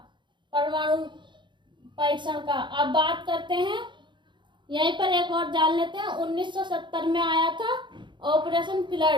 परमाणु परीक्षण का। अब बात करते हैं, यहीं पर एक और जान लेते हैं, 1970 में आया था ऑपरेशन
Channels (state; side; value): late; left; 0.23 ms